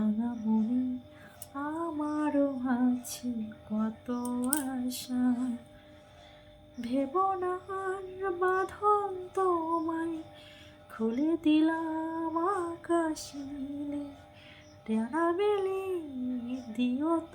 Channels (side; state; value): both; identical; correlation 1.00